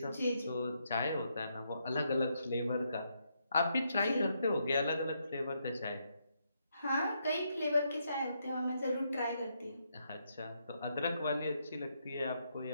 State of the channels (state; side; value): inverted; both; correlation -0.78